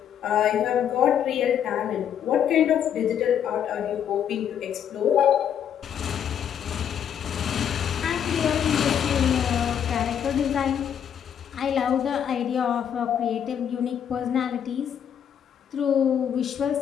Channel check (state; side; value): quieter; right; 8.9 dB